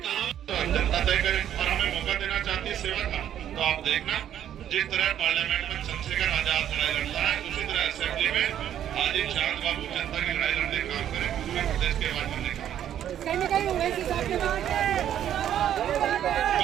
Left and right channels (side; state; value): left; quieter; 10.6 dB